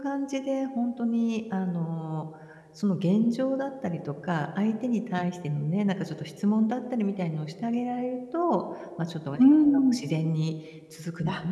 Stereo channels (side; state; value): both; identical; correlation 1.00